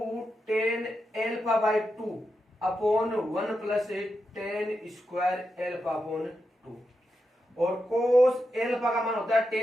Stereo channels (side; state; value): both; normal; correlation 0.87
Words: ten alpha by 2 upon 1 plus ten square alpha upon 2, और कोस एल्फा का मान होता है